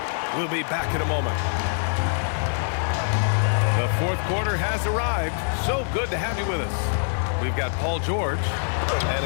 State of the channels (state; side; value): silent; right; digital silence